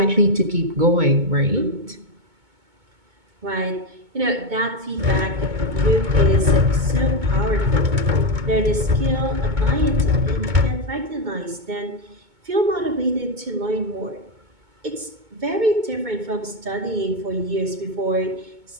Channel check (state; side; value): late; left; 2.2 ms